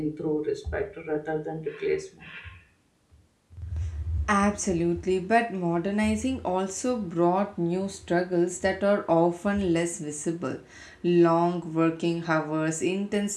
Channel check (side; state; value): both; identical; correlation 1.00